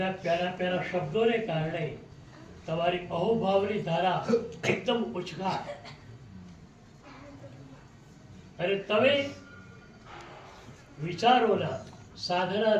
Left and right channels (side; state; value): both; identical; correlation 1.00